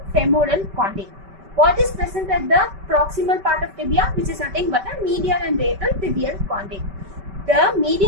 femoral condyle. What is present at the proximal part of tibia, which is nothing but the medial and radial tibial condyle. The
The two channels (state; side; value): late; left; 5.2 ms